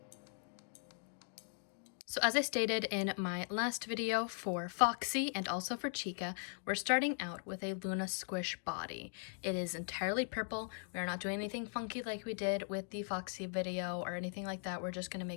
So as I stated in my last video for Foxy and also for Chica, we're starting out with a Luna Squish body. It is entirely purple. We are not doing anything funky like we did with the Foxy video or anything like that. We're just going to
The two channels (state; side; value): silent; right; 51 dB below the other